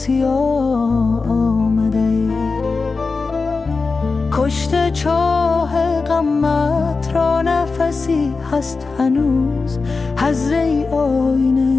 آمده. کشته چاه غمت را نفسی هست هنوز، حضره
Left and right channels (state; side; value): quieter; right; 4.2 dB